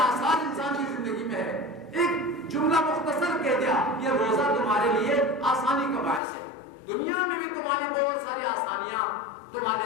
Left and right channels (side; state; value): right; drops out; at 6.2 s